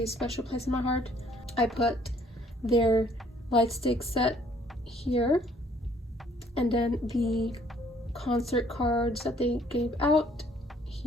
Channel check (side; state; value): both; normal; correlation 0.61